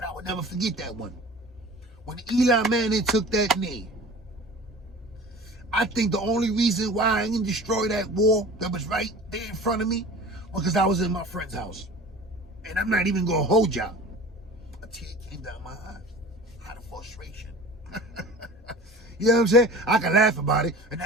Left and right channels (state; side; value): normal; both; correlation 0.40